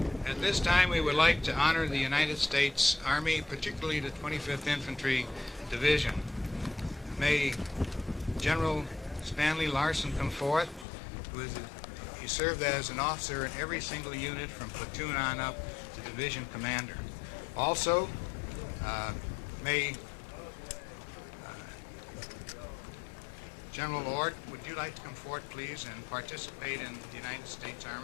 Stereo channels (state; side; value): drops out; right; at 10.9 s